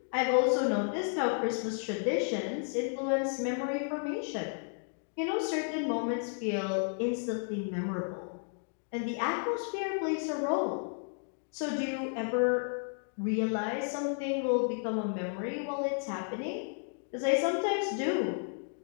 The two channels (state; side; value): silent; right; 56 dB below the other